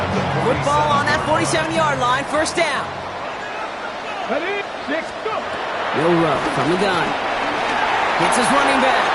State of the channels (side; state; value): both; identical; correlation 1.00